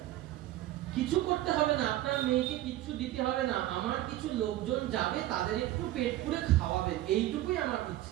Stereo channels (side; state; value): left; quieter; 15.0 dB